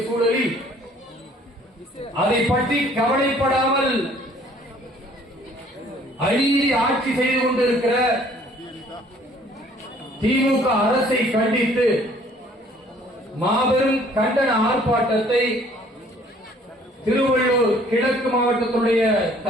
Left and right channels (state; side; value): normal; both; correlation 0.58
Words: சூழலில் அதை பற்றி கவலைப்படாமல் அநீதி ஆட்சி செய்து கொண்டிருக்கிற திமுக அரசை கண்டித்து மாபெரும் கண்டன ஆர்ப்பாட்டத்தை திருவள்ளூர் கிழக்கு மாவட்டத்துடைய